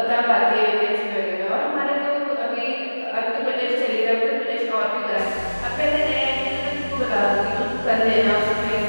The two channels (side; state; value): both; inverted; correlation -1.00